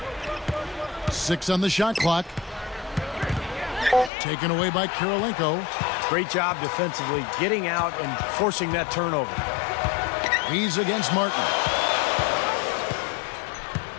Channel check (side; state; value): right; drops out; at 4.1 s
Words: 6 on the shot clock. Taken away by Kirilenko. Great job defensively, getting out and forcing that turnover. He's against Martin.